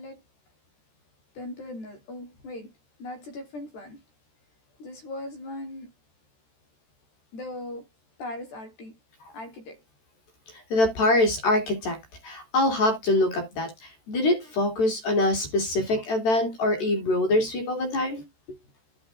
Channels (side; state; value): right; late; 13 ms